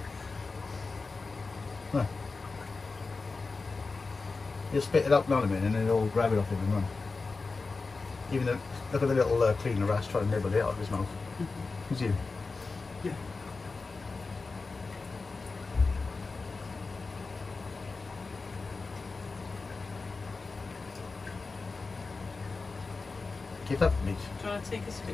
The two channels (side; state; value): right; quieter; 4.0 dB